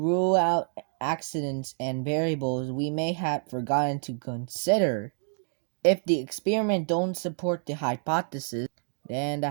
out accidents and variables we may have forgotten to consider. If the experiment don't support the hypothesis, then the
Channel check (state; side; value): silent; left; digital silence